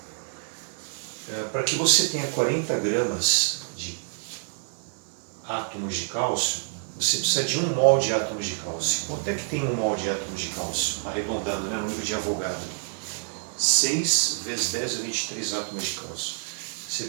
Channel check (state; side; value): silent; left; digital silence